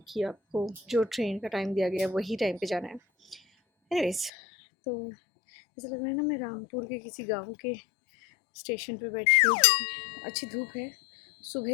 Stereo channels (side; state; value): right; drops out; at 4.3 s